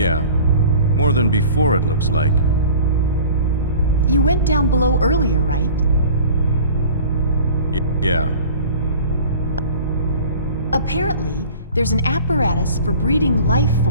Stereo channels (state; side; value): inverted; both; correlation -0.43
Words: More than before, it looks like. You went down below earlier, right? Yeah. Apparently, there's an apparatus for breeding life